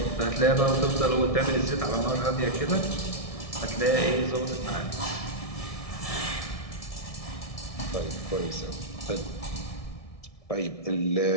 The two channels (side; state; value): right; late; 1.6 ms